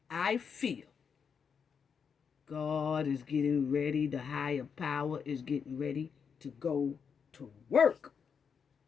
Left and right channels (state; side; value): quieter; right; 6.5 dB